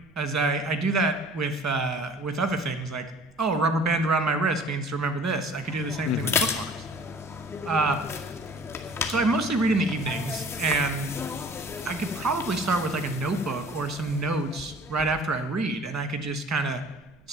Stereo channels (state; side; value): noise; right; rumble, 27 dB below the sound